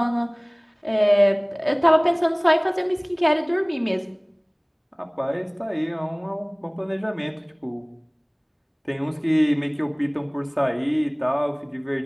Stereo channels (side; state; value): both; identical; correlation 1.00